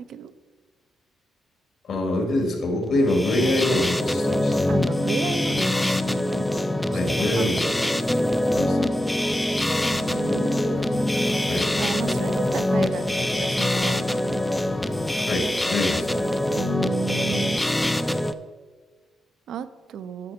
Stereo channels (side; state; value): both; normal; correlation 0.90